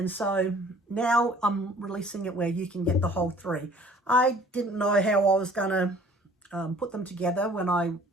so now I'm releasing it where you can get the whole 3. I didn't know how I was going to put them together when I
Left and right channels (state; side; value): normal; both; correlation 0.53